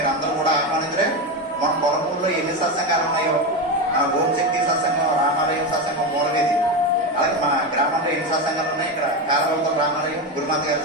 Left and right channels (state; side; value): normal; both; correlation 0.15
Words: అందరూ కూడా ఆహ్వానించరే. మన గొల్లమూడిలో ఎన్ని సత్సంగాలు ఉన్నాయో, మన ఓంశక్తి సత్సంగం, రామాలయం సత్సంగం, మూలవేది, అలాగే మన గ్రామంలో ఎన్ని సత్సంగాలు ఉన్నాయి. ఇక్కడ కారవలతో రామాలయం, గురుమాత గారి